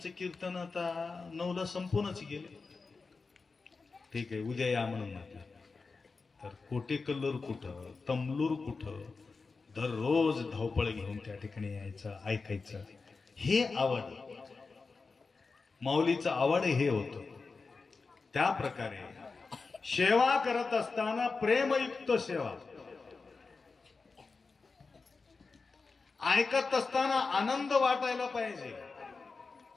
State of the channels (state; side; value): quieter; right; 4.3 dB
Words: कीर्तन आता 9ला संपूनच गेले. ठीक आहे, उद्या या म्हणून म्हटलं. तर कोटेकल्लूर कुठं, तमलूर कुठं, दररोज धावपळ घेऊन त्या ठिकाणी यायचं, ऐकायचं. हे आवड, माऊलीचं आवड हे होतं. त्या प्रकारे सेवा करत असताना प्रेमयुक्त सेवा, ऐकत असताना आनंद वाटायला पाहिजे.